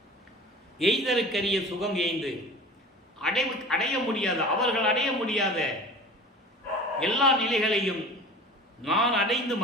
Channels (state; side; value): normal; both; correlation 0.39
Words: எய்தருக்கரிய சுகம் எய்ந்து அடைய முடியாத, அவர்கள் அடைய முடியாத எல்லா நிலைகளையும் நான் அடைந்து